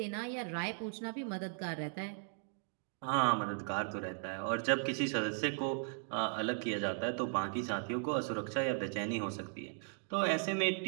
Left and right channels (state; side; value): silent; left; 53 dB below the other